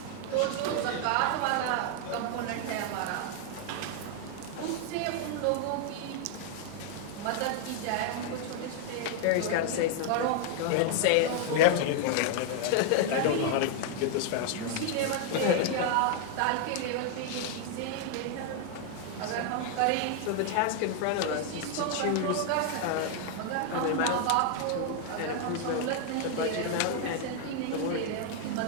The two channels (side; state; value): both; different; correlation 0.00